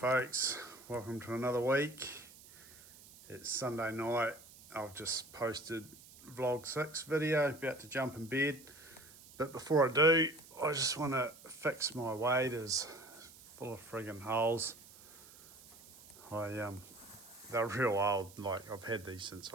Welcome to another week. It's Sunday night. I've just posted vlog 6 video, about to jump in bed. But before I do, I just want to fix my waders. Full of friggin' holes. They're real old. Like, I've had these since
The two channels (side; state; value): right; noise; hiss, 21 dB below the sound